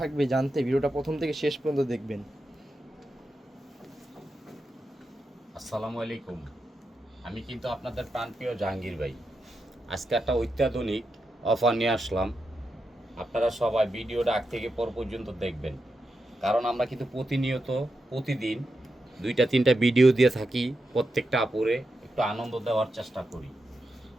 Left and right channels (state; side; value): normal; both; correlation 0.87